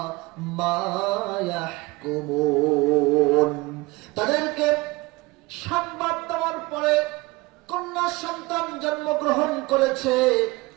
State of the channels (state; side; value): quieter; left; 23.1 dB